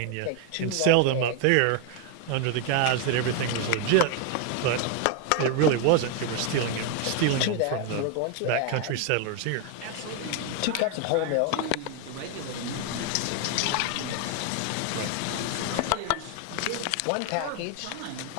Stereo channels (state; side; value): different; both; correlation 0.01